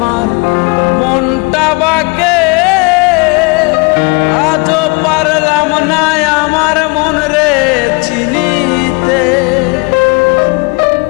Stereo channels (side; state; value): right; quieter; 30.5 dB